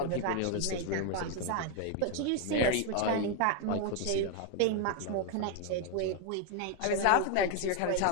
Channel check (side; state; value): both; different; correlation 0.01